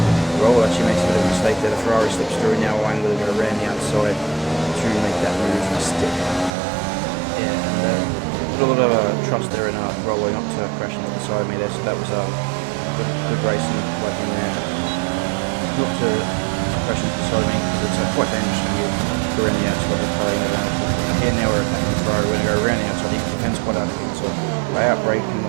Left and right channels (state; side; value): drops out; left; at 6.5 s